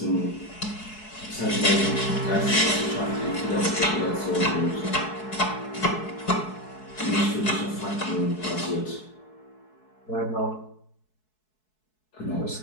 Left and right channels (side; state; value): right; late; 4.7 ms